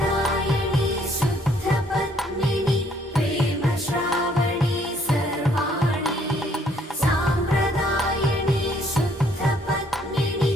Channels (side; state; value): both; normal; correlation 0.65